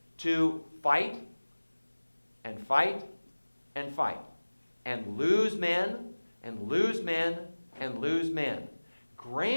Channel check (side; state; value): both; inverted; correlation -1.00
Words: to fight and fight and fight and lose men and lose men and lose men.